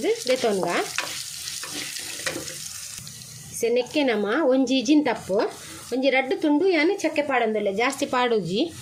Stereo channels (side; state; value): both; identical; correlation 1.00